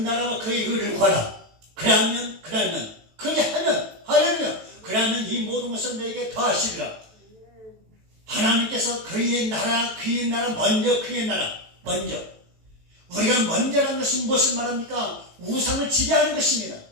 그의 의를 구하라. 그러면 그러면 이 모든 것을 너에게 더하시리라. 하나님께서 그의 나라 먼저. 우리가 먼저라는 것은 무엇을 말합니까? 우상을 지배하는 것입니다.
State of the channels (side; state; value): left; late; 18 ms